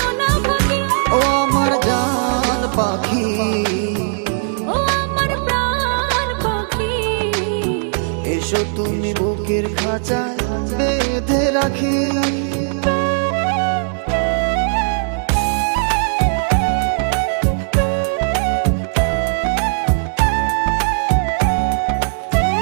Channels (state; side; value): silent; left; 67 dB below the other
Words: না ভাগে। ও আমার জান পাখি, ও আমার প্রাণ পাখি, এসো তুমি বুকের খাঁচায় বেঁধে রাখি।